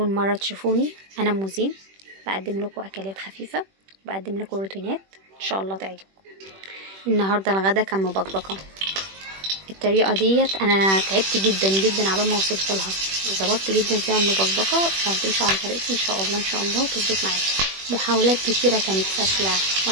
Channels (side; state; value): left; late; 21 ms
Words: مرة تشوفوني، أنا موزين، بقدم لكم أكلات خفيفة، بقدم لكم روتينات إن شاء الله تعجبكم. النهاردة الغدا كان مبكبكة. الطريقة ديت أنا تعبت جدا جدا عبال ما وصلت لها، ظبطت جدا فيها المبكبكة. لو تمشوا على طريقتي إن شاء الله تظبط معاكم. محاولات كتيرة كانت فاشلة،